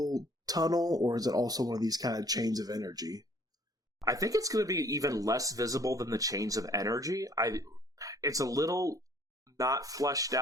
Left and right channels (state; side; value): normal; both; correlation 0.57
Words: tunnel, or is it also one of these kind of chains of energy? I think it's going to be even less visible than the chains of energy. It's a little not fleshed